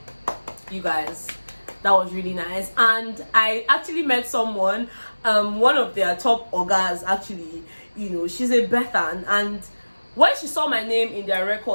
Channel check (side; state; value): both; inverted; correlation -1.00